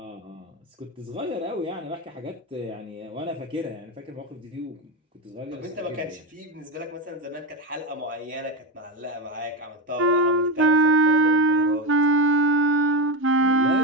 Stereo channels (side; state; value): both; normal; correlation 0.14